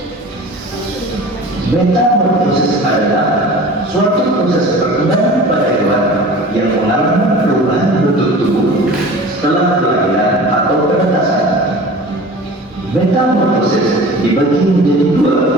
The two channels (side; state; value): both; normal; correlation 0.40